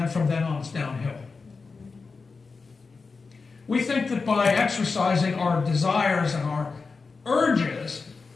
from then on, it's downhill. We think that by exercising our desires and our urges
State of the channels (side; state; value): right; quieter; 4.5 dB